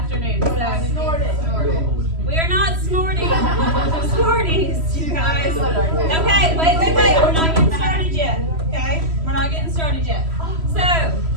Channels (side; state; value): left; late; 3.1 ms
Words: so Snort it. Snort it. we are not snorting Smarties, you guys. Okay, wait, we're not getting started yet, okay? We're not getting started yet. So,